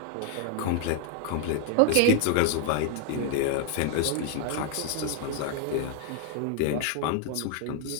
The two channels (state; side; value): different; both; correlation 0.00